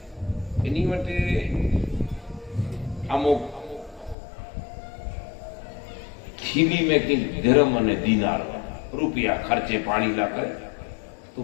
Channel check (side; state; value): right; drops out; at 4.2 s